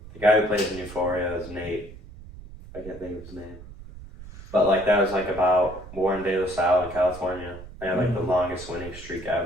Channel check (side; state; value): right; noise; rumble, 16 dB below the sound